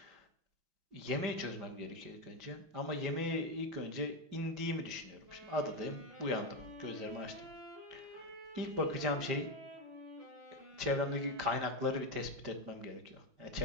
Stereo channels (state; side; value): late; left; 5.1 ms